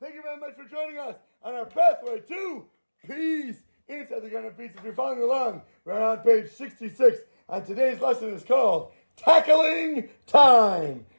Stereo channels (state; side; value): inverted; both; correlation -1.00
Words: you very much for joining us on our pathway to peace. Inside the Garden of Peace, if you're following along, we're on page 66, and today's lesson is called Tackling Time.